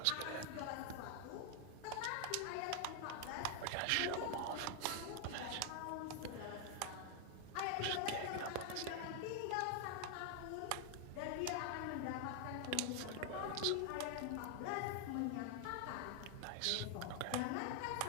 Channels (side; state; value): both; different; correlation 0.00